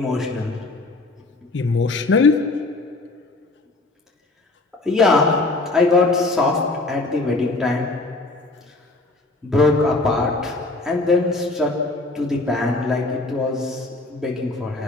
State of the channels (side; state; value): right; quieter; 3.1 dB